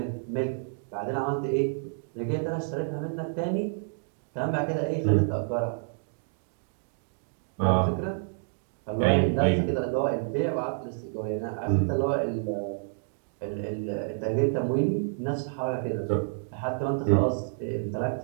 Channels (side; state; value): left; silent; digital silence